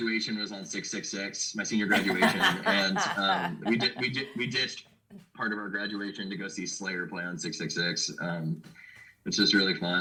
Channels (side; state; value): both; identical; correlation 1.00